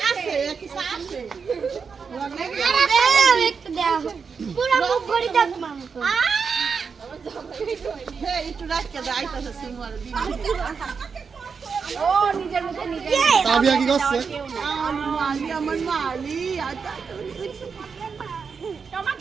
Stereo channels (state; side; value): quieter; left; 5.7 dB